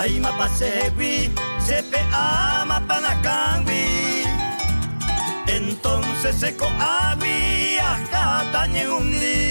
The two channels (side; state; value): both; inverted; correlation -1.00